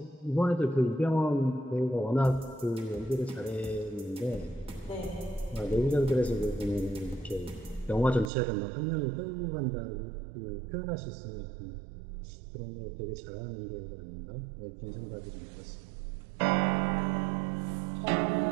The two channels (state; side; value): drops out; left; at 8.3 s